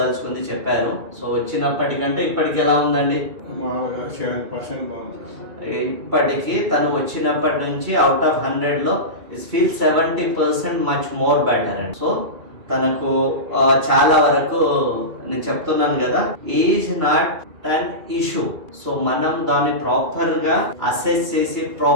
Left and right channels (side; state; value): left; late; 2.3 ms